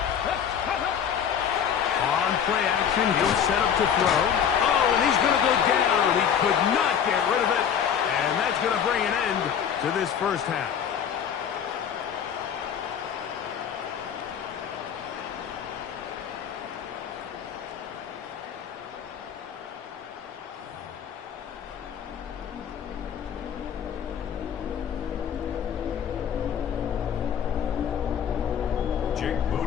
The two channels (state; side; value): quieter; right; 8.3 dB